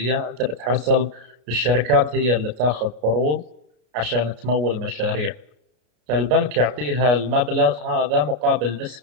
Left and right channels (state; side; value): late; left; 33 ms